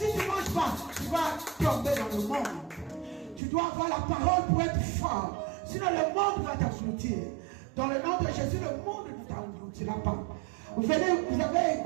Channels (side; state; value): left; drops out; at 3.4 s